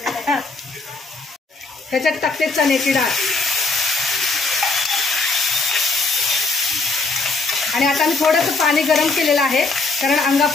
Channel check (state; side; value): quieter; right; 3.6 dB